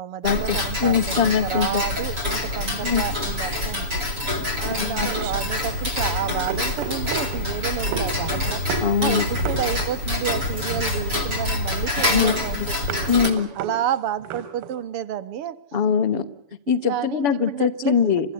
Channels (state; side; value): late; left; 7.0 ms